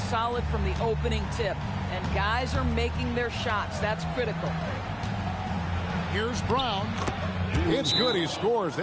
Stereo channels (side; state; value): both; identical; correlation 1.00